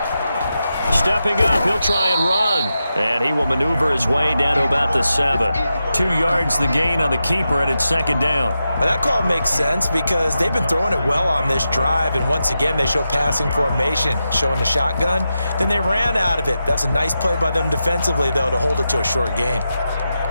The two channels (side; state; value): both; inverted; correlation -0.89